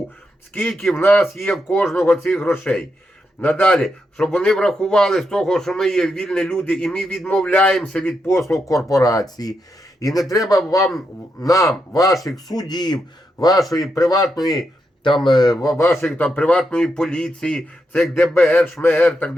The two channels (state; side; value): normal; both; correlation 0.83